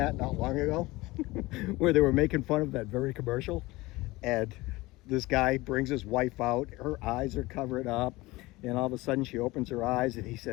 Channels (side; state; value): right; quieter; 20.7 dB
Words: not long ago where they were making fun of that very commercial. And this guy brings his wife out, her eyes are covered up, and all of a sudden she opens her eyes and he